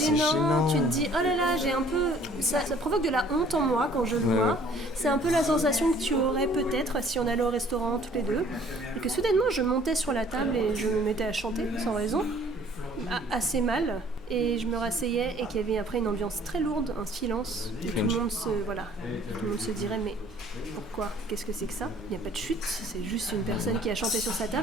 gênant, tu te dis oh là là, j'ai un peu... Ça provoque de la honte en moi quand je le vois. C'est un peu la sensation que tu aurais peut-être si on allait au restaurant tous les deux. Et que soudainement je montais sur la table et je me mettais à chanter sans raison. Assez mal, et je me rasseyais et qu'il y avait après une ambiance très lourde, un silence, et tout le monde se dirait mais pourquoi, qu'est-ce que c'est que ça? Il n'y a pas de chute, c'est juste une personne qui a chanté sur sa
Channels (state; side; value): noise; right; hum, 26 dB below the sound